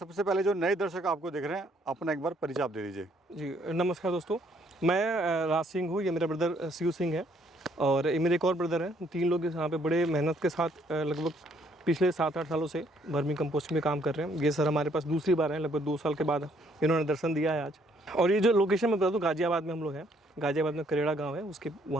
पहले जो नए दर्शक आपको देख रहे हैं अपना एक बार परिचय आप दे दीजिए। जी नमस्कार दोस्तों, मैं राज सिंह हूँ, ये मेरा ब्रदर शिव सिंह है और ये मेरे एक और ब्रदर हैं। 3 लोग यहाँ पे बड़े मेहनत के साथ लगभग पिछले 7-8 सालों से वर्मी कंपोस्ट में काम कर रहे हैं। ये सर हमारे पास दूसरी बार है, लगभग 2 साल के बाद इन्होंने दर्शन दिया है आज। और ये जो लोकेशन मैं बता दूँ, गाजियाबाद में हम लोग हैं। गाजियाबाद में करेड़ा गाँव है, उसके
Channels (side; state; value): both; normal; correlation 0.67